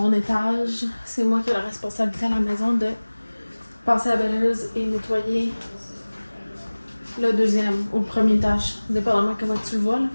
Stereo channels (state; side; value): inverted; both; correlation -1.00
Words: étage. C'est moi qui ai la responsabilité à la maison de passer à la balayeuse et nettoyer le deuxième ou le premier étage, dépendamment comment tu le vois là.